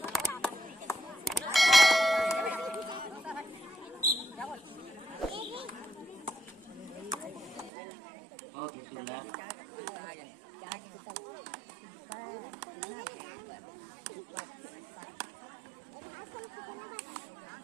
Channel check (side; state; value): left; drops out; at 7.7 s